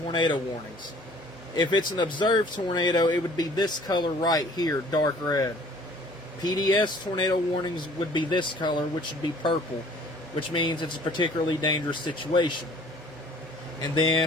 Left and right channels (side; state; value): both; normal; correlation 0.54